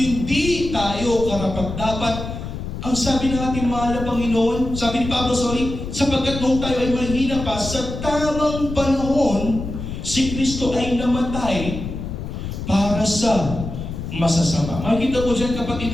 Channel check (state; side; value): noise; left; rumble, 7 dB below the sound